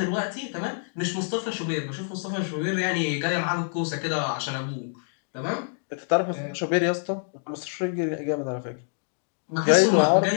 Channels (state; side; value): silent; right; digital silence